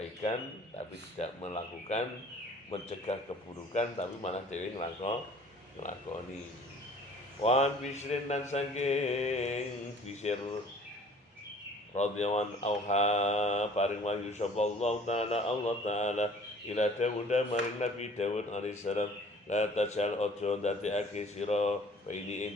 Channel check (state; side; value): normal; both; correlation 0.52